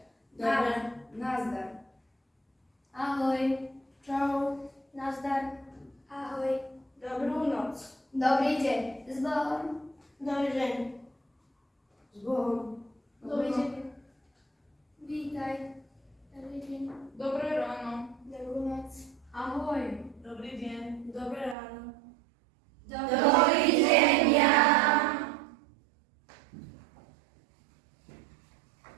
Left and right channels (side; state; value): left; drops out; at 21.6 s